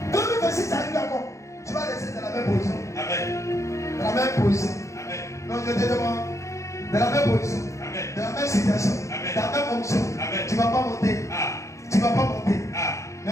2026 arrive encore. Tu vas rester dans la même position. Amen. Dans la même position. Amen. Non, je te demande. Dans la même position. Amen. Dans la même situation. Amen. Dans la même fonction. Amen. Tu ne vas pas monter. Ah. Tu ne vas pas monter. Ah. Mais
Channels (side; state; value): right; late; 0.15 ms